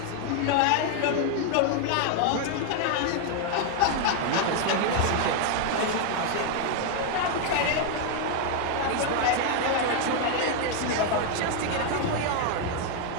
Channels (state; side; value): different; both; correlation 0.00